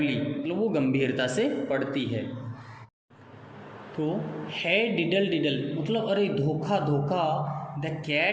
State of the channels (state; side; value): identical; both; correlation 1.00